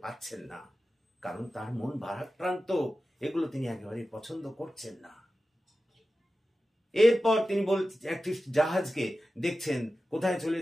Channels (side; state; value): both; normal; correlation 0.94